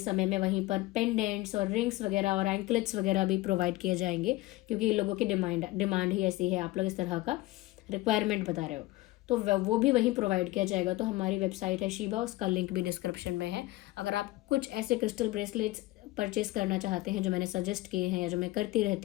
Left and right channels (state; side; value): quieter; right; 18.8 dB